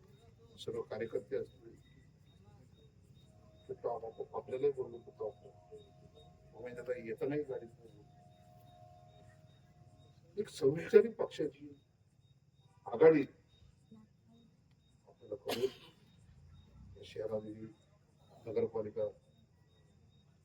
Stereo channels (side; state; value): both; identical; correlation 1.00